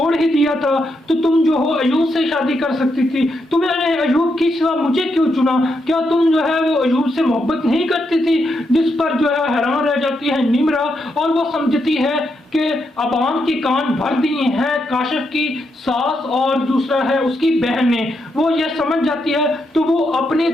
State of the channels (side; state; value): both; normal; correlation 0.81